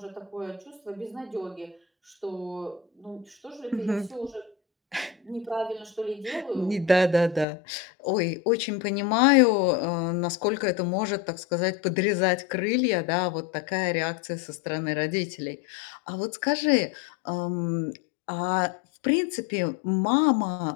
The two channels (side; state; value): right; drops out; at 7.5 s